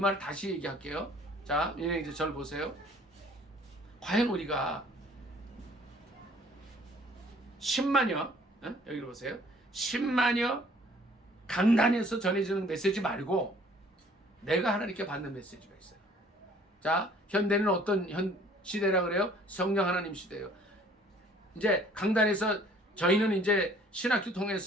다시 얘기할게요. 자, 이제 저를 보세요. 과연 우리가 10만여, 여기를 보세요. 10만여 강단에서 전해지는 메시지 말고 내가 하나님께 받는 메시지가 있어요. 자, 현대는 어떤 시대라 그래요? 성령 하나님 시대예요. 이제 강단에서 저희는 이제 신학교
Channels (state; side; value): normal; both; correlation 0.56